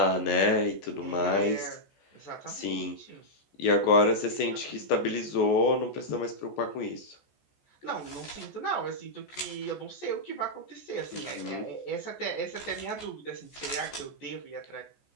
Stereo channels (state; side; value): late; right; 14 ms